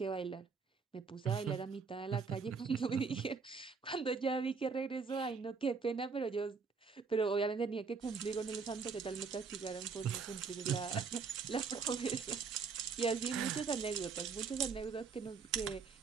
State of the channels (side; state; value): left; quieter; 5.2 dB